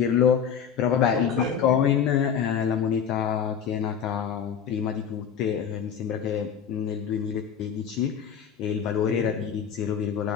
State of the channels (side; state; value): right; quieter; 7.8 dB